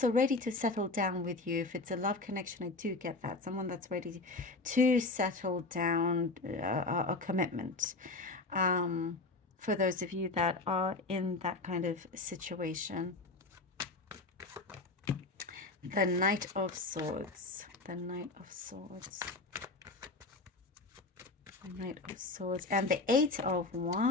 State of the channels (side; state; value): right; quieter; 3.3 dB